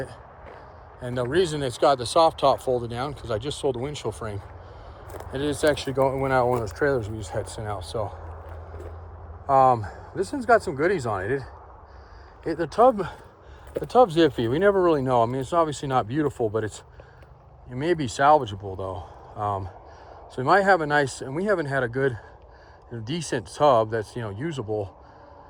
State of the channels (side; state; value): both; identical; correlation 1.00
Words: And the reason it's got the soft top folded down, because I just sold the windshield frame. And it's actually went out one of those trailers we just had sent out. So this one's got some goodies on it. The tub's iffy. We never really know. I mean, it's obviously not beautiful, but it may be salvageable though. So we might have a nice, and we haven't had a good, decent tub that's usable